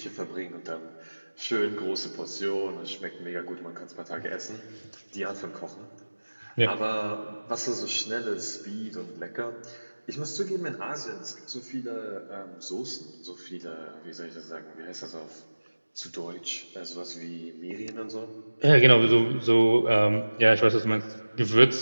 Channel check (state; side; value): inverted; both; correlation -1.00